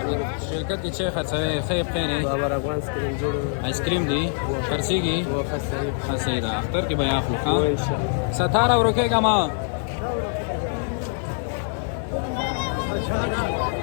شرکت کې چې خرڅوي خیر خیر بابر افغان سکرین جوړ آیسکریم دی خرڅېږي خرڅېږي ده اختر کې به یې اخلو ښه ستاره ورکېږه ما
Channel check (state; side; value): silent; right; 57 dB below the other